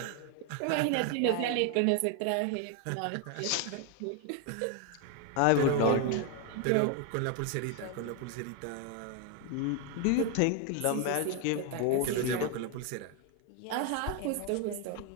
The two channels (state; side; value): different; both; correlation 0.01